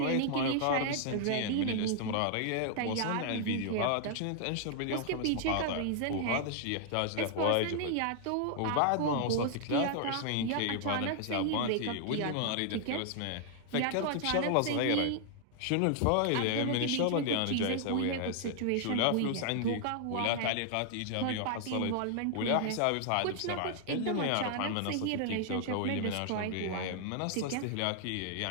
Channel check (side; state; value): both; different; correlation 0.00